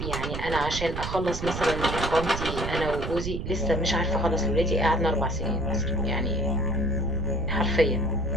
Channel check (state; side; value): noise; right; rumble, 5 dB below the sound